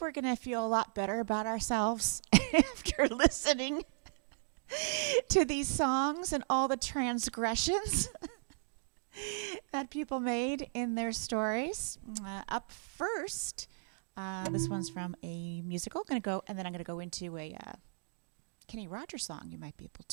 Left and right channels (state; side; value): silent; left; digital silence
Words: going to feel a lot better about ourselves after listening to these songs and all the transgressions that people made in their stories. Up first, this one's from a musical. And then I'm going to go into a Kenny Rogers song. You might be able